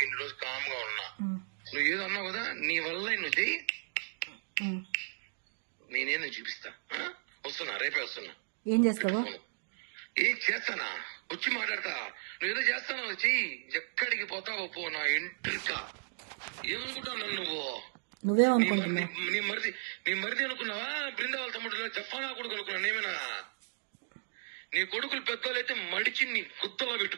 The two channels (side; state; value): left; silent; digital silence